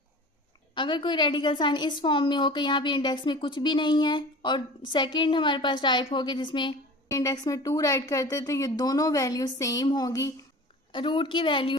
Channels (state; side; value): normal; both; correlation 0.39